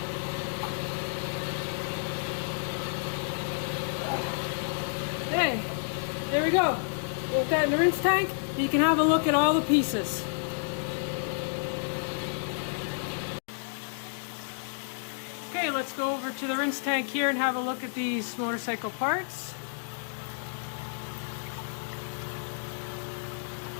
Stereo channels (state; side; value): silent; right; digital silence